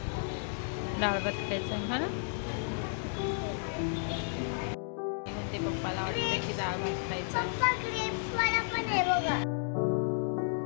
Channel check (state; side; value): silent; right; digital silence